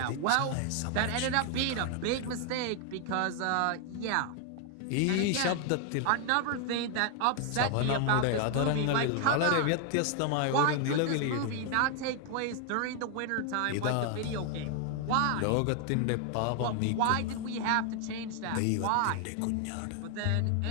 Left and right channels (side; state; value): both; different; correlation 0.00